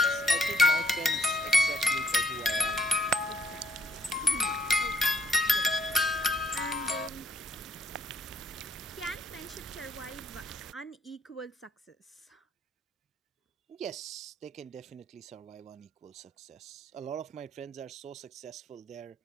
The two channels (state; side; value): normal; both; correlation 0.70